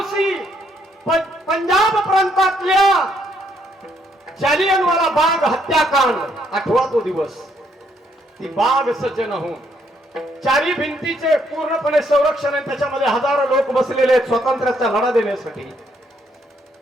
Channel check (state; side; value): normal; both; correlation 0.71